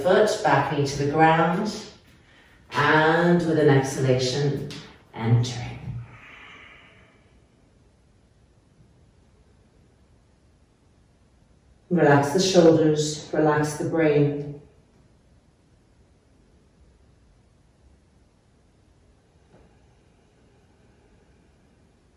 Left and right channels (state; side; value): identical; both; correlation 1.00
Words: back knee to the ground, and with an exhalation, entering. Relax the shoulders, relax the brain.